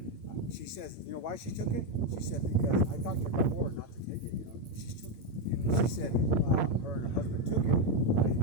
she says, you know why she took it? She said, because I talked to her before not to take it, you know. She took it. She said her and her husband took it, right?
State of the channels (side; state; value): right; late; 8.7 ms